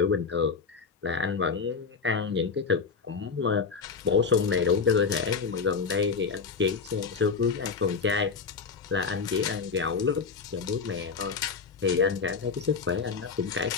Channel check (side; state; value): right; quieter; 5.3 dB